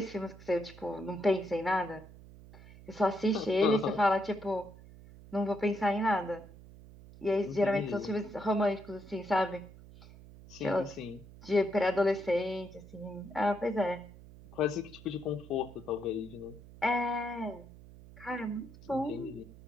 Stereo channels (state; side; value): noise; right; hum, 19 dB below the sound